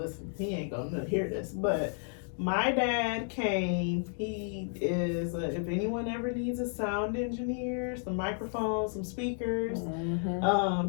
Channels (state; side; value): silent; right; 56 dB below the other